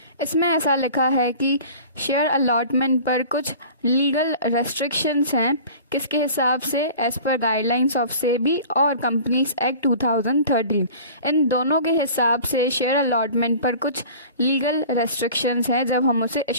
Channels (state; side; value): inverted; both; correlation -0.42